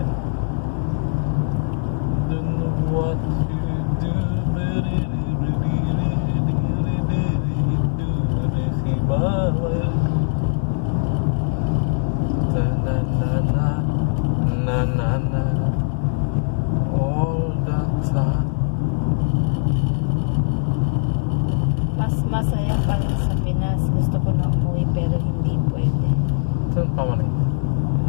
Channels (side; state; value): right; silent; 65 dB below the other